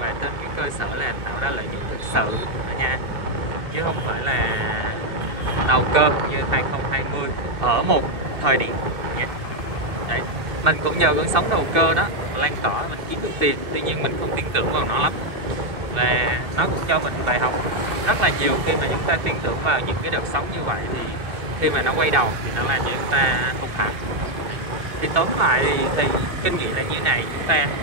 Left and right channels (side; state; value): left; late; 2.3 ms